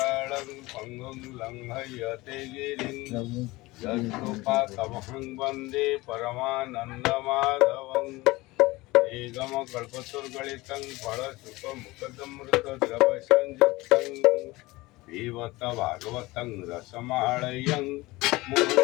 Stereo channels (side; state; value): right; quieter; 20.9 dB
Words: पङ्गुं लङ्घयते गिरिं यत्कृपातमहं वन्दे परमानन्दमाधवं निगमकल्पतरुगलितं फलसुखमुखदमृतद्रवसंयुक्तं पिबत भागवतं रसमालयं